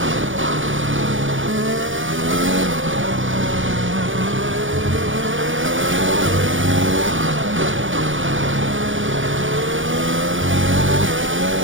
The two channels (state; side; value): late; left; 0.57 ms